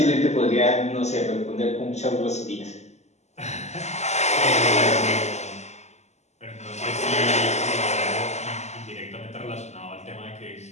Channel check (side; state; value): right; late; 0.33 ms